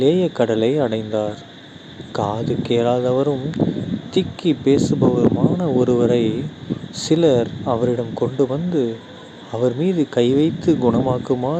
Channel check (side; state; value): both; identical; correlation 1.00